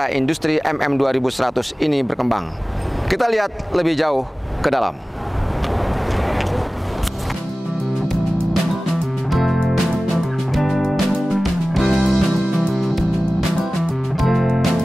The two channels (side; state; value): both; normal; correlation 0.97